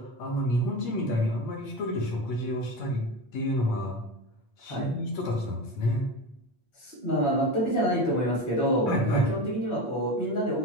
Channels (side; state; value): right; late; 8.5 ms